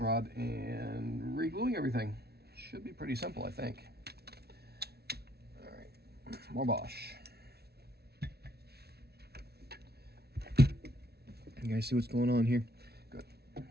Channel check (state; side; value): late; left; 0.47 ms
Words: and re-gluing everything. Should be pretty simple, I think. All right, more Bosch. You guys see what's going on here? Good.